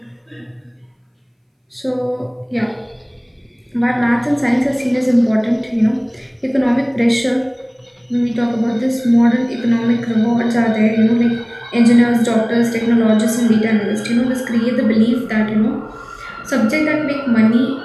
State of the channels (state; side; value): identical; both; correlation 1.00